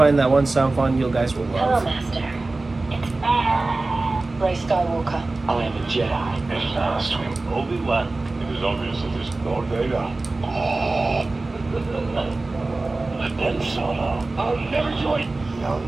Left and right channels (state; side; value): quieter; left; 3.2 dB